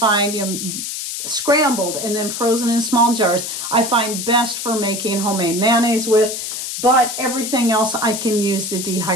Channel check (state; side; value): noise; left; hiss, 5 dB below the sound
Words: scrambled and then frozen in small jars I find best for making homemade mayonnaise with, but everything else I can use the